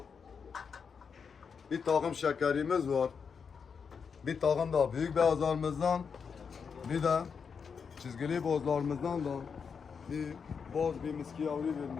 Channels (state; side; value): quieter; right; 6.1 dB